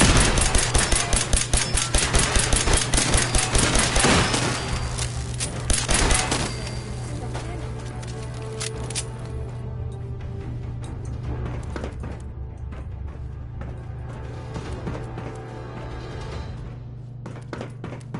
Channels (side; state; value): both; identical; correlation 1.00